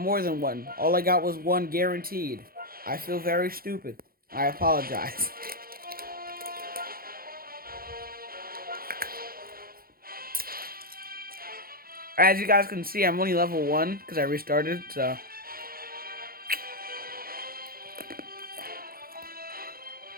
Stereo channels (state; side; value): late; left; 0.43 ms